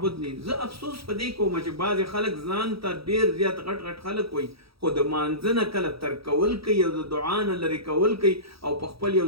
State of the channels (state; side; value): late; left; 0.76 ms